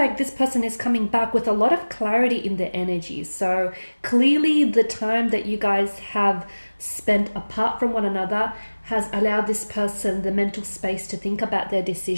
this person is coming back with a lot of clarity in their energies. So clearly the time that you guys have spent apart from one another has allowed this person the mental space to think about their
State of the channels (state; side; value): inverted; both; correlation -1.00